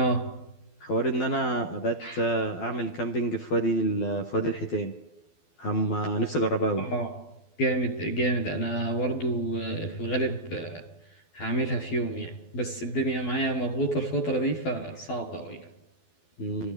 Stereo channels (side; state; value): right; late; 12 ms